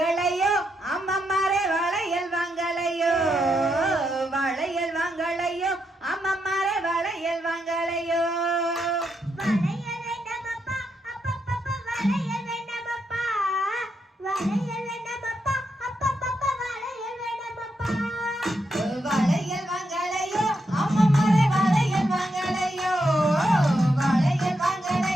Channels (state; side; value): normal; both; correlation 0.82